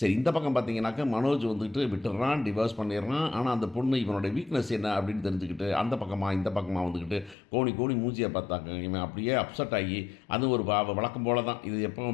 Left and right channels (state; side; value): drops out; right; at 7.4 s